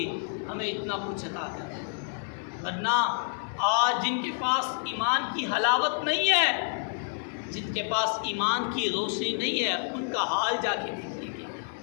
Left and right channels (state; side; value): silent; right; 59 dB below the other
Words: ہمیں اتنا کچھ عطا کر۔ ورنہ آج جن کے پاس ایمان کی حلاوت نہیں ہے، جن کے پاس ایمان کی روشنی نہیں ہے، ان کا حال جا کے دیکھیے گے۔